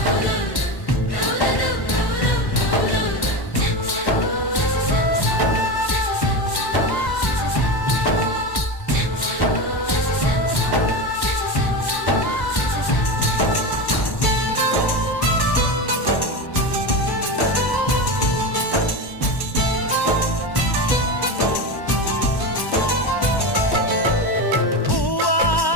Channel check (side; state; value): right; late; 1.1 ms